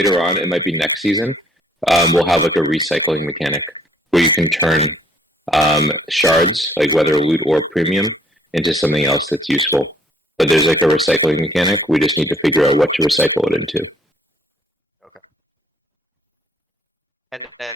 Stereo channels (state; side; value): normal; both; correlation 0.63